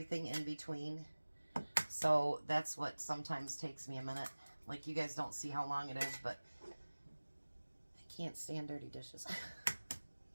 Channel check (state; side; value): inverted; both; correlation -1.00